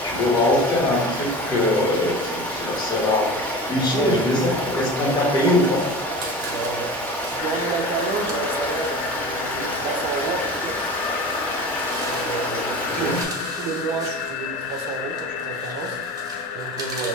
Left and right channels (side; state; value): both; normal; correlation 0.34